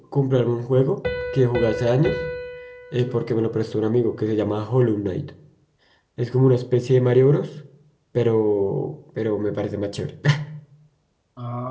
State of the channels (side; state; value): both; identical; correlation 1.00